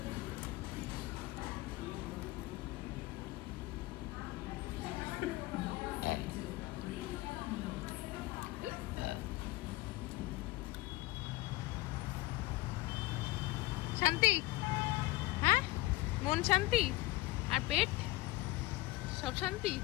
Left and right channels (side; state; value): right; quieter; 19.4 dB